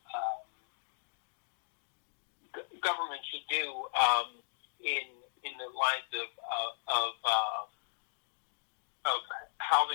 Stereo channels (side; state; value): right; silent; digital silence